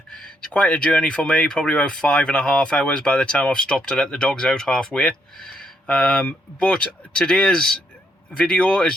It's quite a journey for me, probably about 5.5 hours by the time I've stopped to let the dogs out halfway. But today's video is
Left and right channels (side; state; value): both; normal; correlation 0.75